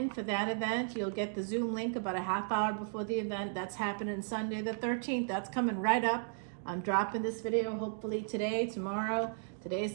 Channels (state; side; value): silent; left; digital silence